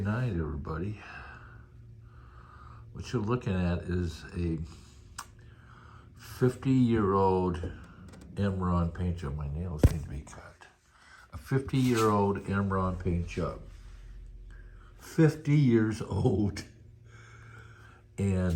everybody. What you're looking at is a 50-year-old Imron paint job. My nails need to be cut. A 50-year-old Imron paint job. 50 years old.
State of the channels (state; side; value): identical; both; correlation 1.00